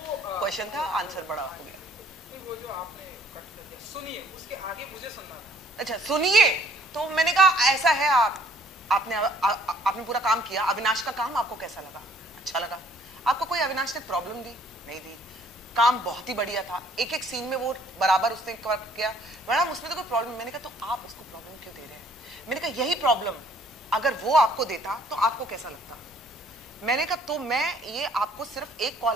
क्वेश्चन था, आंसर बड़ा हो गया। वो जो आपने कट कर दिया, सुनिए, उसके आगे मुझे सुनना था। अच्छा सुनिए, तो मैंने कहा ऐसा है, आपने पूरा काम किया। अविनाश का काम आपको कैसा लगा? अच्छा लगा। आपको कोई अविनाश ने प्रॉब्लम दी? नहीं दी। काम बहुत ही बढ़िया था, एक एक सीन में वो बराबर उसने किया। मैडम उसमें तो कोई प्रॉब्लम। मैंने कहा तो आप उसको प्रॉब्लम क्यों दे रहे हैं? मैंने कहा यही प्रॉब्लम अगर वो आपको देता तो आपको कैसा लगता? मैंने कहा तो मैं ये आपको सिर्फ एक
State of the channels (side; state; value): both; normal; correlation 0.60